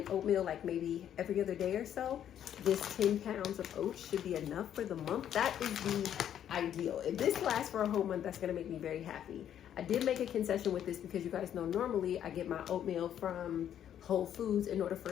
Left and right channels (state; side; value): quieter; right; 10.1 dB